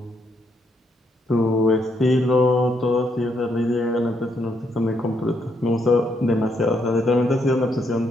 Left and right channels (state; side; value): normal; both; correlation 0.76